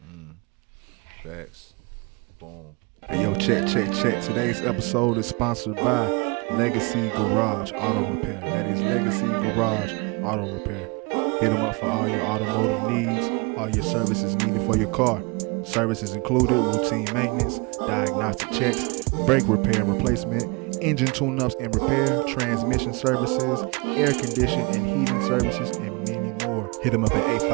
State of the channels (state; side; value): quieter; left; 29.3 dB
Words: Facts. Boom. Hey, yo, check. Today's episode is sponsored by Legacy Garage Auto Repair. That is Legacy Garage Auto Repair. Hit them up for all your automotive needs, all your services needed for your car. Services included routine maintenance, diagnostic checks, brake repair and replacement, engine tune-ups and repair, transmission services, air condition and heating services, and many more. Hit them up at